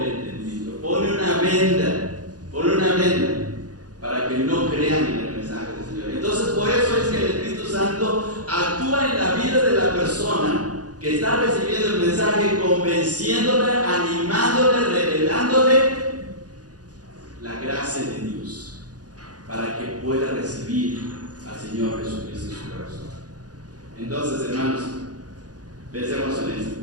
entendimiento. Pone una venda para que no crean en el mensaje del Señor. Entonces, por eso es que el Espíritu Santo actúa en la vida de la persona que está recibiendo el mensaje, convenciéndole, animándole, revelándole la gracia de Dios, para que pueda recibir recibir al Señor Jesucristo en su corazón. Entonces, hermanos, pensemos en esto.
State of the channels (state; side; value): late; left; 0.68 ms